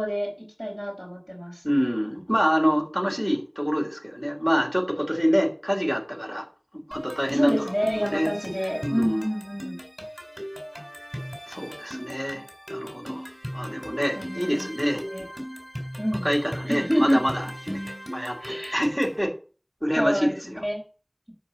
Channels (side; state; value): both; identical; correlation 1.00